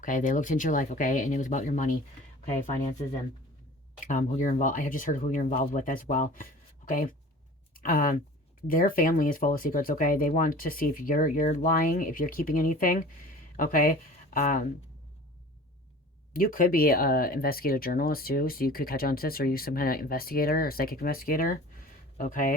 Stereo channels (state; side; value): normal; both; correlation 0.42